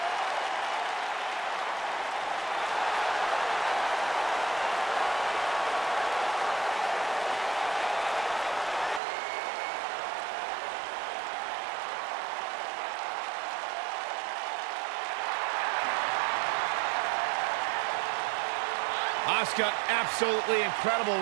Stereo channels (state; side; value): drops out; left; at 9.0 s